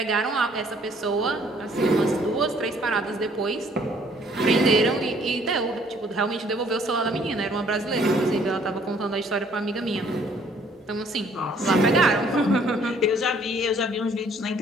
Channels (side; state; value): both; normal; correlation 0.61